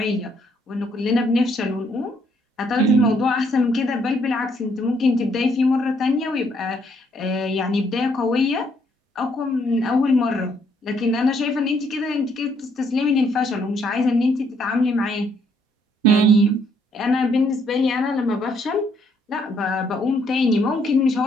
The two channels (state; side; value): normal; both; correlation 0.70